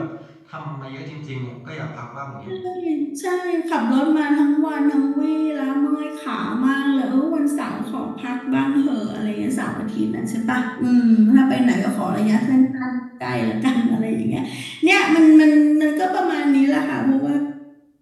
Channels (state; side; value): identical; both; correlation 1.00